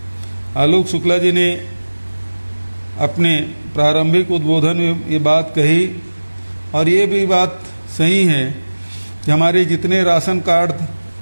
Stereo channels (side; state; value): both; inverted; correlation -1.00